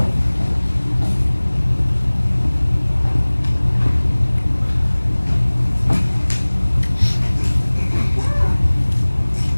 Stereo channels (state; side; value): inverted; both; correlation -1.00